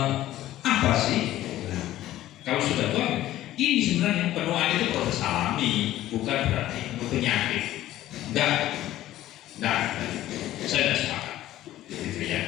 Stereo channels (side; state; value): right; quieter; 14.3 dB